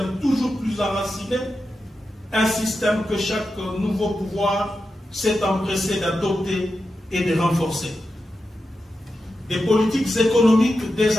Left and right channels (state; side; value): normal; both; correlation 0.90